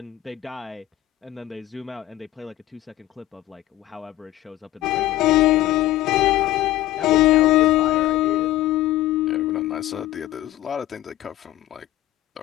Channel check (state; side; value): quieter; right; 15.1 dB